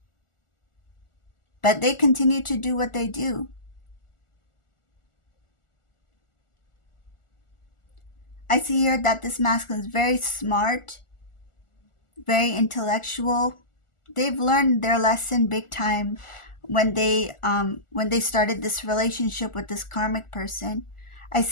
But they continue to do what they do. I see here that this masculine is very smart, very intellectual. They've learned their lesson big time when they started this relationship with this karmic person. I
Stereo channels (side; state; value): right; late; 1.4 ms